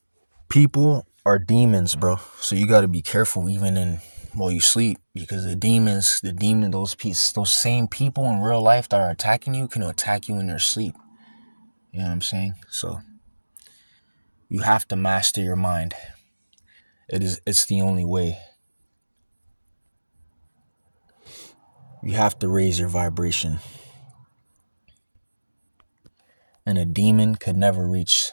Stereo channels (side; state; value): both; inverted; correlation -1.00